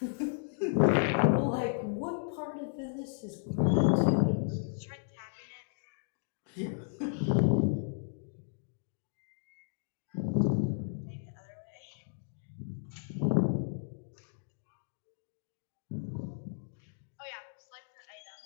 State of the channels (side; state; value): right; silent; digital silence